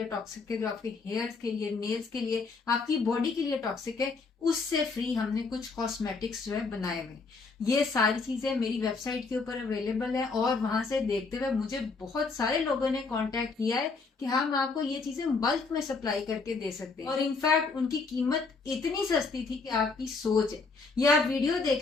टॉक्सिक है, जो आपके हेयर्स के लिए, नेल्स के लिए, आपकी बॉडी के लिए टॉक्सिक है, उससे फ्री हमने कुछ कॉस्मेटिक्स जो है बनाए हुए। ये सारी चीजें मेरी वेबसाइट के ऊपर अवेलेबल है और वहां से देखते हुए मुझे बहुत सारे लोगों ने कांटेक्ट किया है कि हम आपको ये चीजें बल्क में सप्लाई करके दे सकते हैं। और इनफैक्ट उनकी कीमत इतनी सस्ती थी कि आपकी सोच है। ये आप वीडियो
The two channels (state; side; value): quieter; right; 4.3 dB